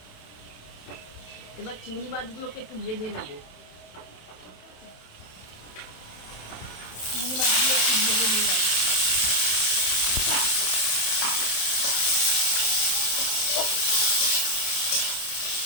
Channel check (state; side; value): late; right; 27 ms